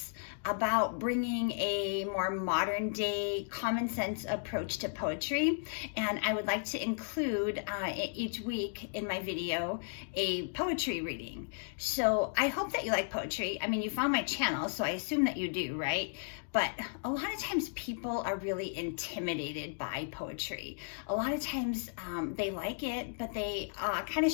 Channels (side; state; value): right; silent; digital silence